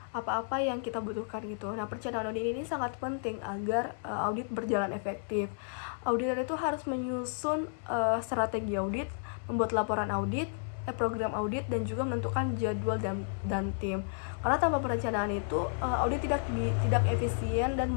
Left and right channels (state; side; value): silent; right; 56 dB below the other